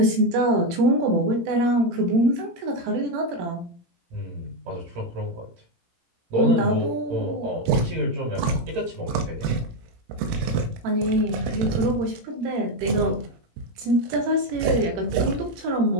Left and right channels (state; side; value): late; left; 18 ms